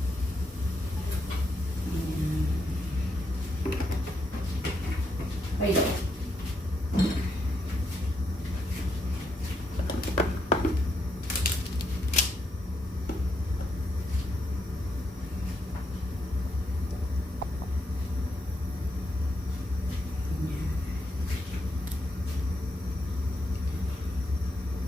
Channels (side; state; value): both; normal; correlation 0.79